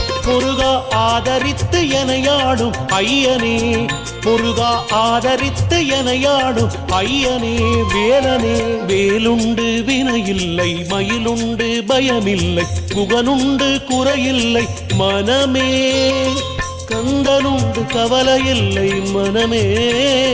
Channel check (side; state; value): both; identical; correlation 1.00